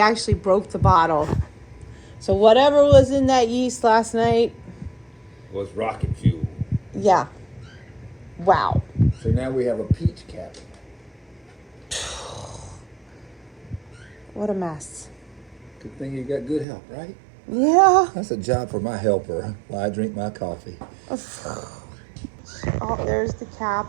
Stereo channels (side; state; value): left; drops out; at 16.7 s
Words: broke the bottle. So whatever was in that yeast last night, Was rocket fuel. yeah. Wow. So now we have a peach cabinet. What a mess. Good thing you got good help, right? Yeah. That's a job for my helper while I drink my coffee. Oh, there's the